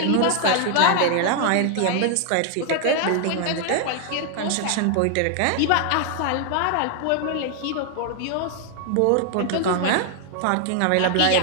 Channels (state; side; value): different; both; correlation 0.00